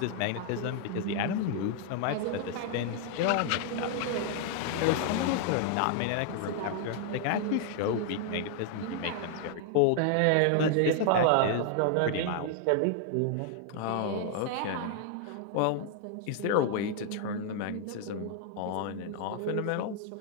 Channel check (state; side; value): different; both; correlation 0.00